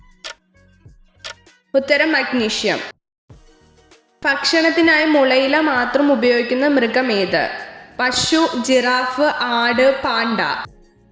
ഉത്തരം മഗ്നീഷ്യം. ഭക്ഷണത്തിനായി മുളയില മാത്രം ഉപയോഗിക്കുന്ന മൃഗമേത്? പശു, ജിറാഫ്, ആട്, പാണ്ട.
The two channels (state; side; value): identical; both; correlation 1.00